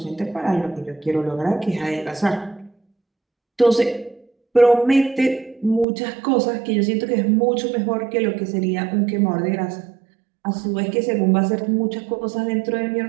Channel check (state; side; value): drops out; left; at 5.9 s